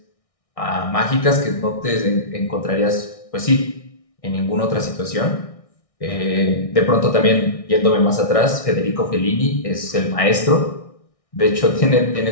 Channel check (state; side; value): late; right; 1.6 ms